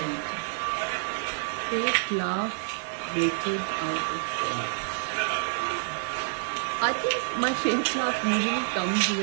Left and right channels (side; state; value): left; silent; digital silence